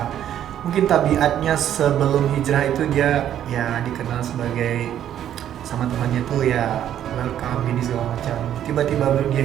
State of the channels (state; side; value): quieter; left; 10.7 dB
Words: Mungkin tabiatnya sebelum hijrah itu dia ya dikenal sebagai sama temannya tuh ya welcome ini segala macam. Tiba-tiba dia